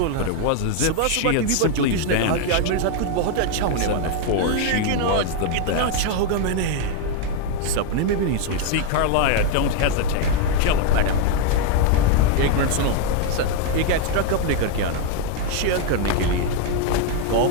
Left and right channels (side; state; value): both; different; correlation 0.01